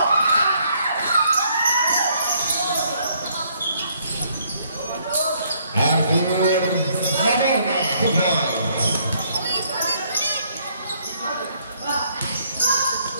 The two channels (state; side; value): inverted; both; correlation -0.67